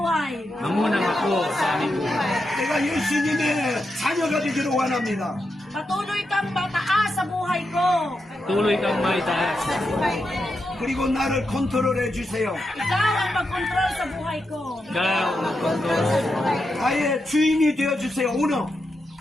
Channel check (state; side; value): normal; both; correlation 0.86